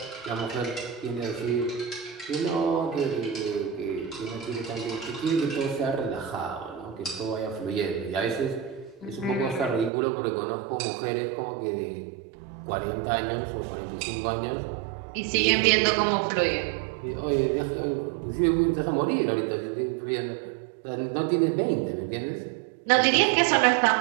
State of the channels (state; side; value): drops out; left; at 9.9 s